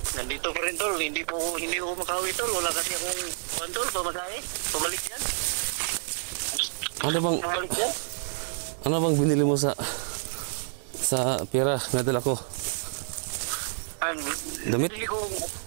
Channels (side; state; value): left; silent; digital silence